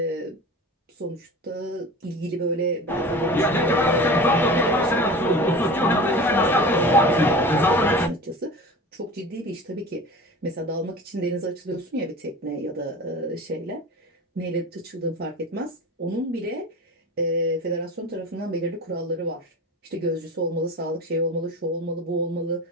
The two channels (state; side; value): normal; both; correlation 0.35